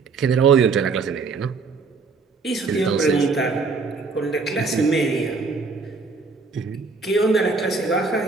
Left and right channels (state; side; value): quieter; left; 4.5 dB